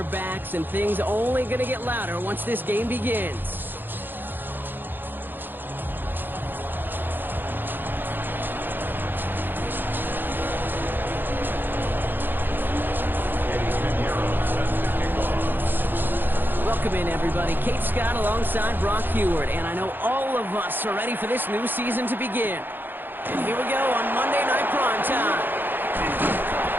backs, and things only going to get louder once this game begins. Welcome in, everybody. Kate Scott alongside Brock Heward, and I know all of us are ready for this new season to begin. And here we go on Monday Night Primetime.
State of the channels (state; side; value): late; left; 0.094 ms